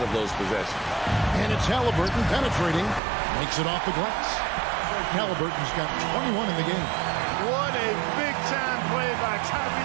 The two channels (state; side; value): drops out; left; at 3.0 s